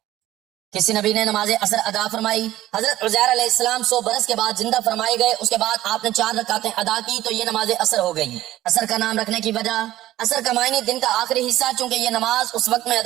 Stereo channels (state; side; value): quieter; left; 14.8 dB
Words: کسی نبی نے نماز عصر ادا فرمائی، حضرت عزیر علیہ السلام 100 برس کے بعد زندہ فرمائے گئے، اس کے بعد آپ نے 4 رکعتیں ادا کی تو یہ نماز عصر ہو گئی۔ عصر کا نام رکھنے کی وجہ، عصر کا معنی دن کا آخری حصہ، چونکہ یہ نماز اس وقت میں